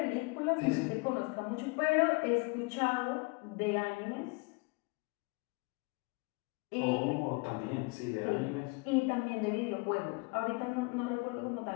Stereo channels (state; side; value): quieter; right; 28.7 dB